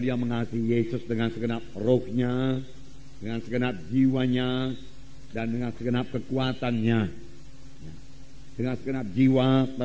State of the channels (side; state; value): both; identical; correlation 1.00